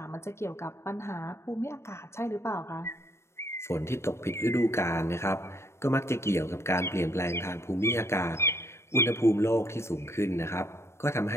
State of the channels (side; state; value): right; late; 0.13 ms